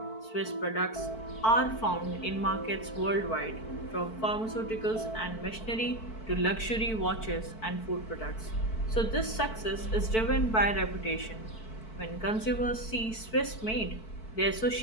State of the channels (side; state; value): right; late; 4.5 ms